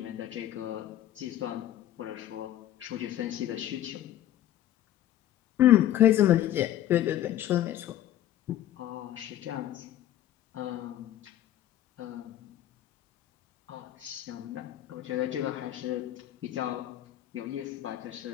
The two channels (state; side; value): quieter; right; 12.5 dB